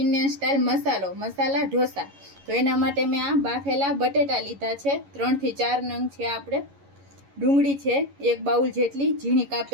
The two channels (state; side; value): late; left; 11 ms